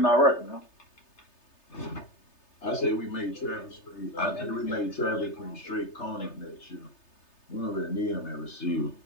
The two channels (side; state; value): right; late; 3.3 ms